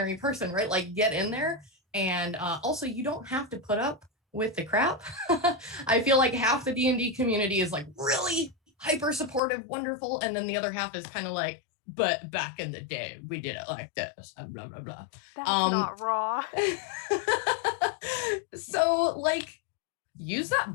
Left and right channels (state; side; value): drops out; right; at 9.4 s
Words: person, right? Like, get in there. And also, you don't have to put up with the crap. I feel like half the D&D community is like really hyper supportive, wonderful, and then the other half is kind of like, but back in the day we did it like this and blah blah blah. That's not raw. So like, use